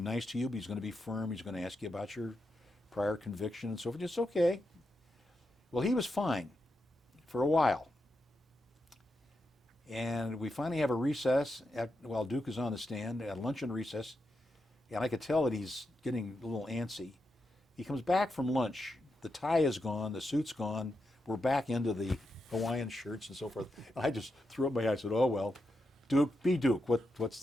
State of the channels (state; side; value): normal; both; correlation 0.86